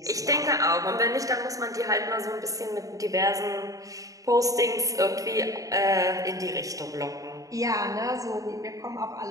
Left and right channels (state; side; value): late; left; 0.16 ms